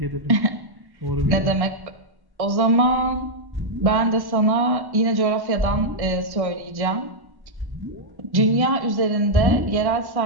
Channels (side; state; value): left; late; 1.1 ms